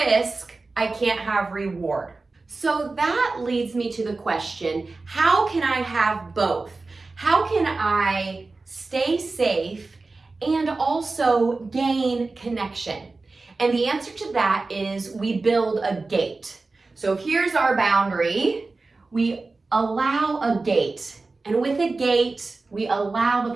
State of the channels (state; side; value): quieter; left; 3.6 dB